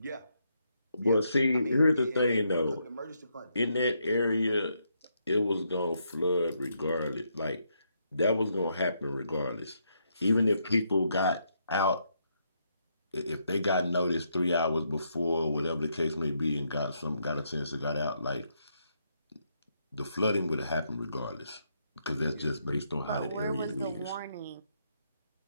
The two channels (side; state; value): both; inverted; correlation -0.77